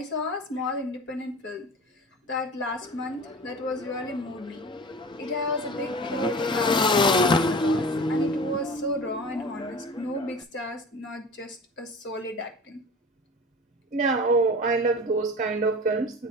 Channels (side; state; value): both; normal; correlation 0.36